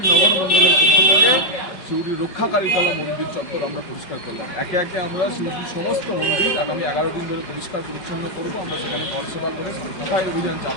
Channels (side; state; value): right; late; 5.3 ms